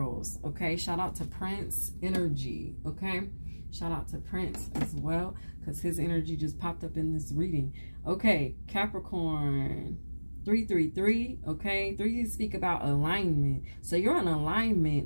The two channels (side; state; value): both; inverted; correlation -1.00